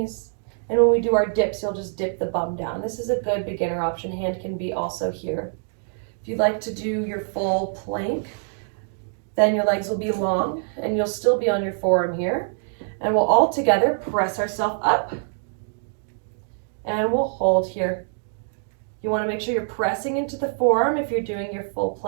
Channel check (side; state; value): left; silent; digital silence